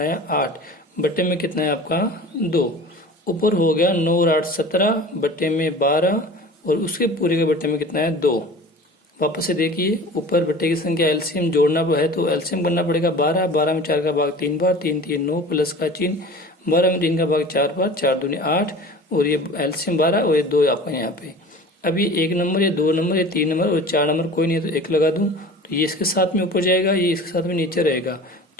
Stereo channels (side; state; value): both; normal; correlation 0.39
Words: 8। बट्टे में कितना है आपका? 2। ऊपर हो गया 9 और 8 17, बट्टे में 12 और उसके पूरे के बट्टे में कितना है? 2। वापस से देखिए, ऊपर बट्टे की संख्या एलसीएम जोड़ना है तो एलसीएम करना पड़ेगा 12। 12 में 4 का भाग 3 बार, 3 3 9 प्लस का चिन्ह। 12 में 3 का भाग 4 बार, 4 दूनी 8 और ये एलसीएम 12 और ये 2 आपका यहाँ पे। अब ये 1 नंबर, ये 2 नंबर, ये 3 नंबर और 4 नंबर कोई नहीं है तो 1 लगा दूं तो ये इसके साथ में ऊपर जाएगा, ये इसके साथ में नीचे रहेगा।